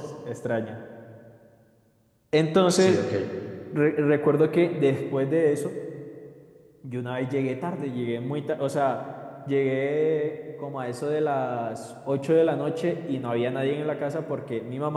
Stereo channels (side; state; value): both; identical; correlation 1.00